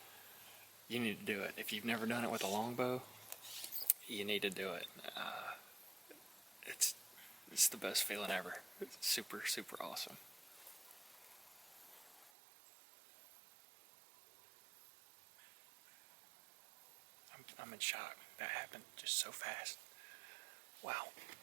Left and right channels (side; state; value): left; drops out; at 12.3 s